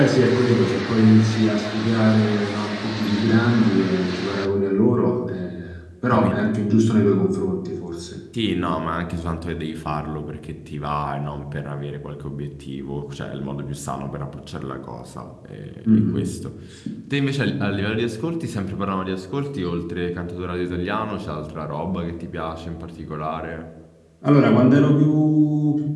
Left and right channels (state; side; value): identical; both; correlation 1.00